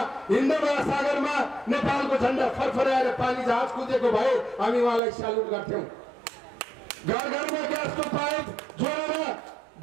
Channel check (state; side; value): drops out; left; at 5.0 s